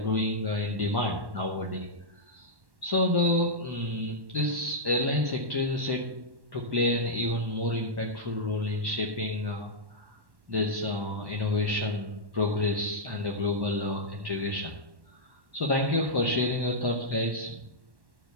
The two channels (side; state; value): left; late; 1.1 ms